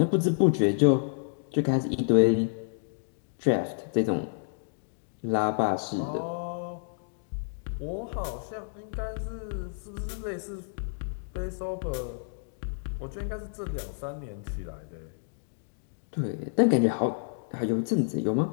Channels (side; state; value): right; silent; digital silence